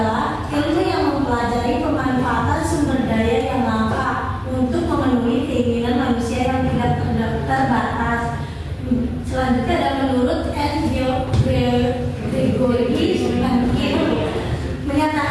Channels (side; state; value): both; identical; correlation 1.00